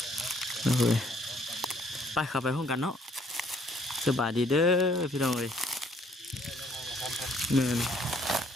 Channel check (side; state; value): both; normal; correlation 0.63